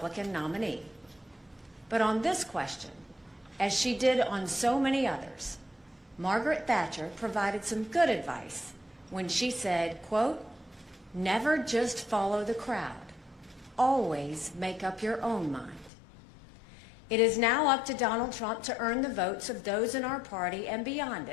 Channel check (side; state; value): right; drops out; at 15.9 s